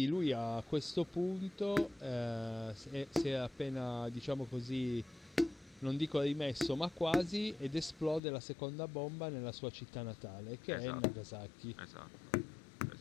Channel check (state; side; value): drops out; right; at 8.2 s